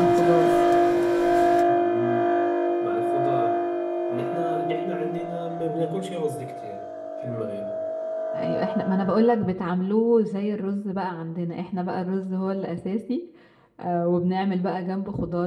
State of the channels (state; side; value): identical; both; correlation 1.00